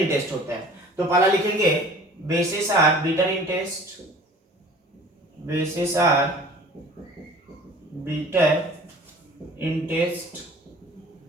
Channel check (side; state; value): both; normal; correlation 0.47